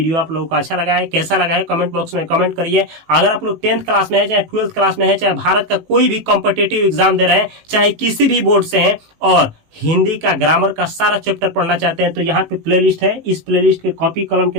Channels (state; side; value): late; left; 18 ms